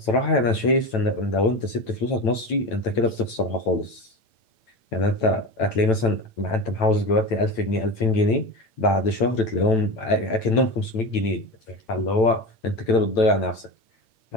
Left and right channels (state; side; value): late; right; 9.0 ms